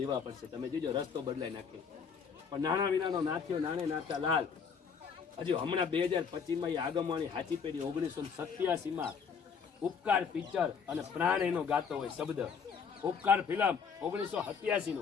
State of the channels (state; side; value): quieter; right; 6.3 dB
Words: પડશે. તમે જોજો રસ્તો બદલાઈ નાખે. પણ નાના વિનાનો નાથ્યો નાણે નાતા લાલ. હજુ હમણાં 2025માં એ આગમવાની હાચી પેઢી 1987માં ઉપકાર પિક્ચર અને પ્રાણ એનો ગાતો હોય શબ્દ. ઉપકાર ફિલ્મ